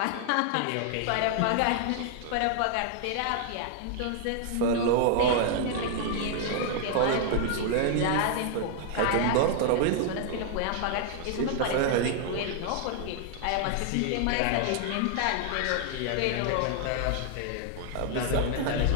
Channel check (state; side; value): different; both; correlation 0.00